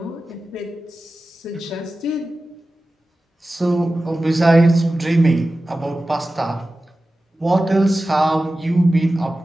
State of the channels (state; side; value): normal; both; correlation 0.95